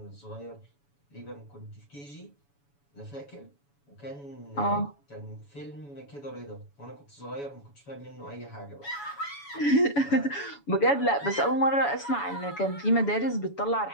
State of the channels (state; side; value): late; right; 7.1 ms